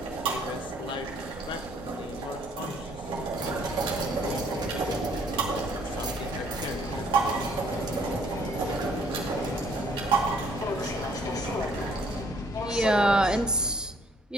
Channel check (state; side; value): normal; both; correlation 0.62